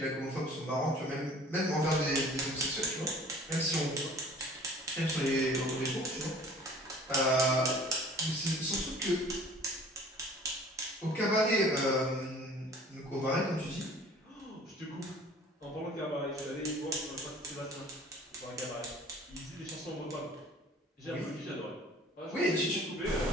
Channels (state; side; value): normal; both; correlation 0.49